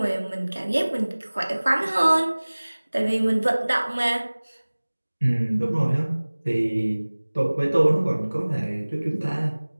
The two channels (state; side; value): inverted; both; correlation -1.00